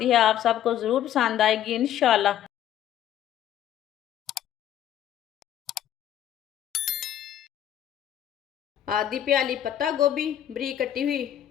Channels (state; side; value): quieter; right; 11.1 dB